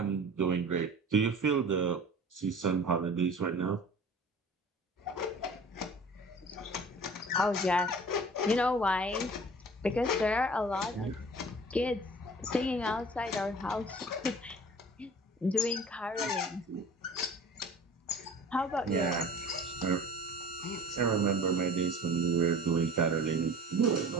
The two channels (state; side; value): normal; both; correlation 0.43